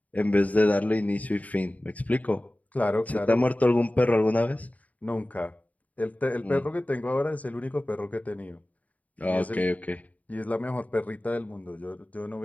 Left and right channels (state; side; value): late; right; 0.072 ms